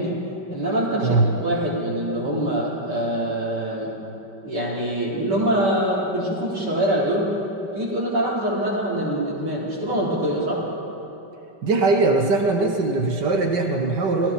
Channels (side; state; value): left; late; 5.2 ms